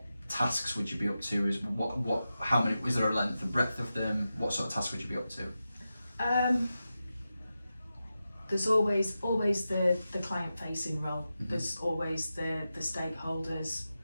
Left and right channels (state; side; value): inverted; both; correlation -0.91